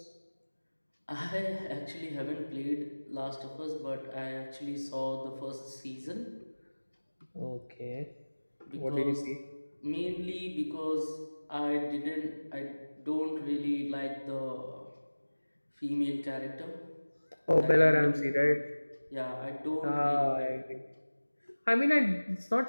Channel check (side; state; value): both; inverted; correlation -1.00